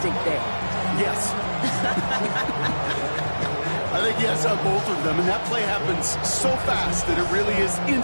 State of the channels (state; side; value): inverted; both; correlation -1.00